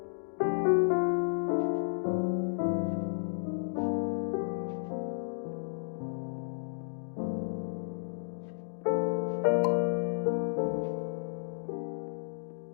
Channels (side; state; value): right; silent; digital silence